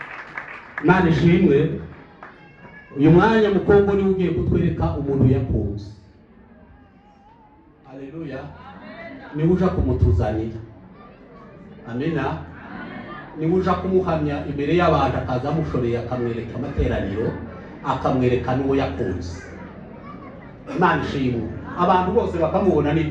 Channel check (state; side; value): identical; both; correlation 1.00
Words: Imana ishimwe. Uyu mwanya mu Kongo niwe ugiye kutwereka umuntu yakunze. Haleluya. Niwe uja kumutuzanira. Amina. Niwe uja kumuhamya imbere y'abantu, akaza amushoreye akamwereka amateraniro, akamwereka n'uwo yakunze. Imana ishimwe. Abantu bose bakamubona